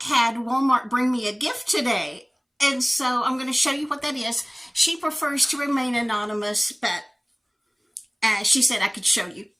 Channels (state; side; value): identical; both; correlation 1.00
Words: had Walmart bring me a gift today, and so I'm going to show you what that is. She prefers to remain anonymous, but she said I could show you.